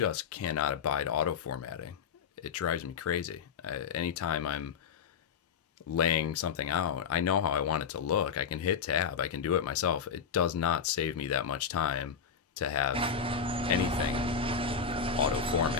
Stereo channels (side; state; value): right; quieter; 6.6 dB